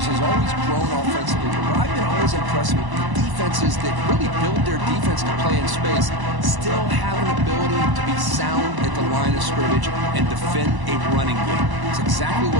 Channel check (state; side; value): late; left; 1.0 ms